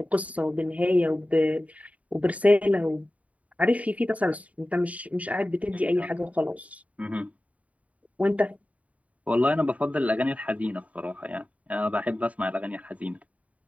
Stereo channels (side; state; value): left; late; 0.069 ms